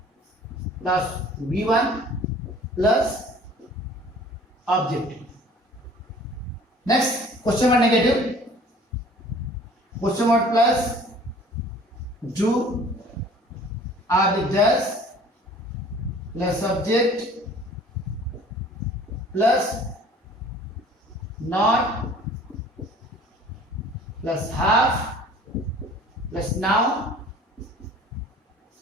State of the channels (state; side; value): normal; both; correlation 0.49